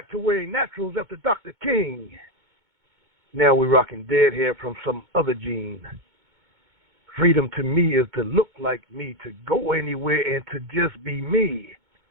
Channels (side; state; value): left; late; 2.2 ms